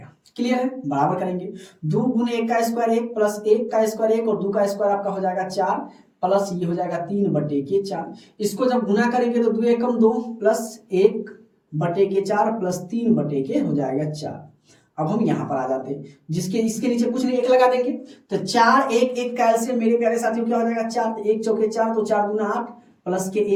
क्लियर है। बराबर करेंगे 2 गुने 1 का स्क्वायर 1 प्लस 1 का स्क्वायर 1 और 2 का स्क्वायर आपका हो जाएगा 4, प्लस ये हो जाएगा 3/4। इसको जब गुना करेंगे तो 2 एकम 2 प्लस 1/4 प्लस 3/के हो जाएगा 4। अब हम यहाँ पर आ जाते हैं, जिसके इसके नीचे कुछ नहीं 1 लगा देंगे, तो 4 1 1 का एलसीएम मेरे प्यारे साथियों क्या हो जाएगा 4, तो 1 चौके 4, तो 4 गुना 8 प्लस के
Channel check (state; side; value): identical; both; correlation 1.00